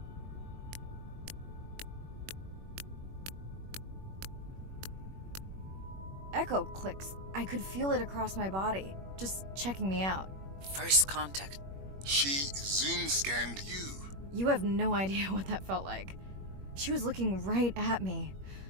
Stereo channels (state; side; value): late; left; 21 ms